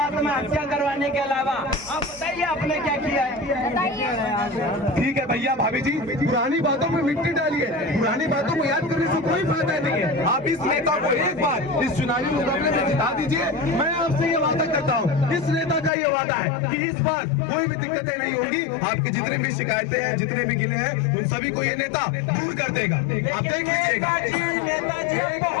करवाने के अलावा आप बताइए आपने क्या किया है? बताइए। ठीक है भैया भाभी जी पुरानी बातों में मिट्टी डालिए, पुरानी बातों को याद करने से कोई फायदा नहीं है। आप इस नेता को एक बार इस चुनावी मुकाबले में जिता दीजिए। मैं आपसे ये वादा करता हूँ, इस नेता का ये वादा है कि इस बार कोई भी दिक्कतें नहीं होंगी। आपकी जितने भी शिकायतें हैं, जितने भी गिले हैं, उन सभी को ये नेता दूर कर देगा। आप देख लीजिएगा। नेताजी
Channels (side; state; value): right; drops out; at 15.9 s